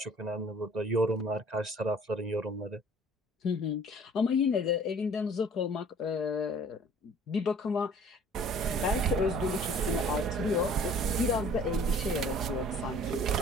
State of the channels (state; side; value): normal; both; correlation 0.52